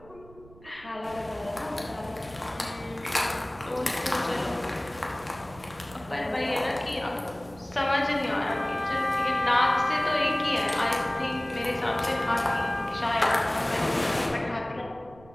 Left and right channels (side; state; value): right; noise; rumble, 22 dB below the sound